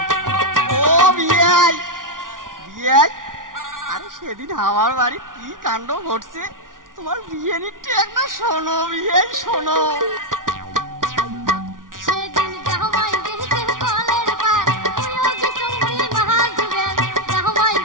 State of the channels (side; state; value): left; late; 0.89 ms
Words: সেদিন আমার বাড়ি কি কাণ্ড ঘটছে তোমার বিয়ে নিতে একটা শোনো বিয়ে শোনো